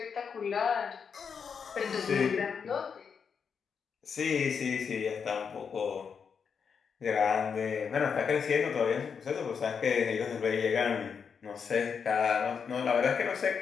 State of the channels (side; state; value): right; quieter; 6.4 dB